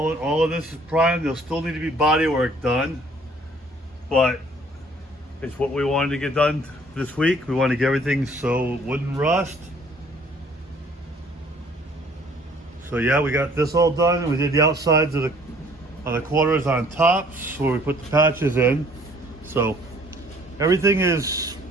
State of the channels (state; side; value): normal; both; correlation 0.57